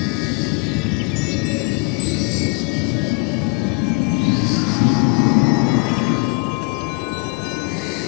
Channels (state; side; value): quieter; right; 31.0 dB